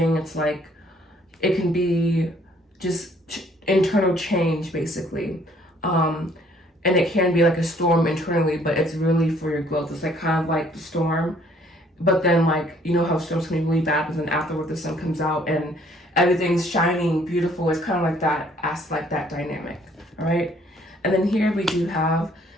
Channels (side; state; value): both; normal; correlation 0.61